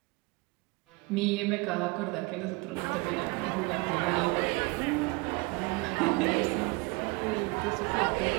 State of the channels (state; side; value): quieter; left; 27.0 dB